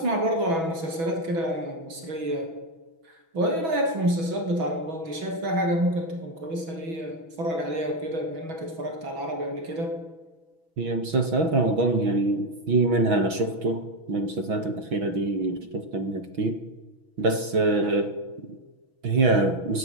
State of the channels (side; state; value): left; late; 6.1 ms